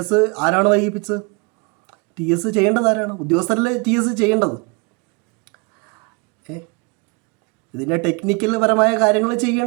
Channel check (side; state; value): left; quieter; 30.4 dB